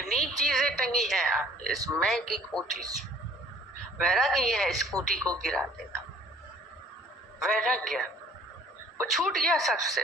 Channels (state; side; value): normal; both; correlation 0.54